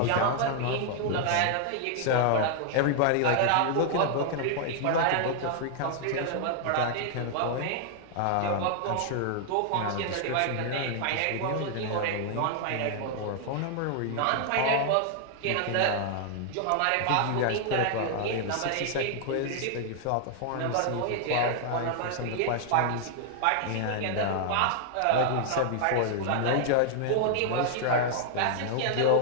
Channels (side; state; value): both; different; correlation 0.00